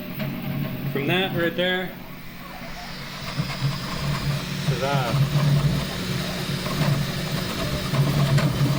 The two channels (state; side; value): identical; both; correlation 1.00